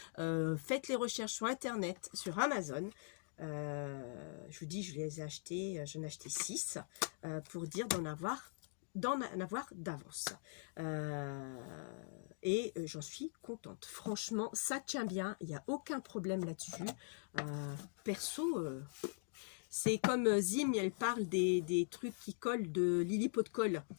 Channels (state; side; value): silent; right; digital silence